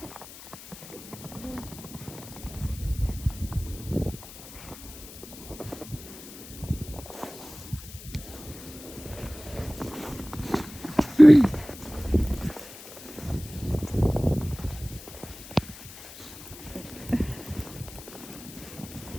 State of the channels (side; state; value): left; noise; hiss, 16 dB below the sound